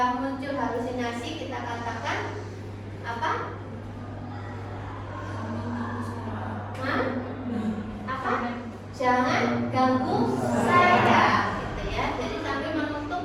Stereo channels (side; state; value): both; identical; correlation 1.00